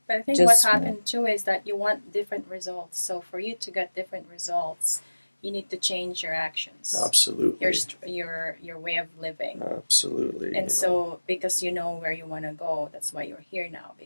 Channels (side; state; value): both; inverted; correlation -1.00